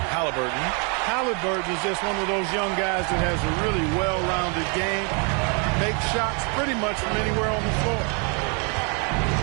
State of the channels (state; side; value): quieter; left; 35.9 dB